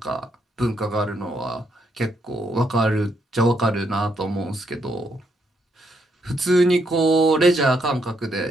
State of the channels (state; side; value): normal; both; correlation 0.75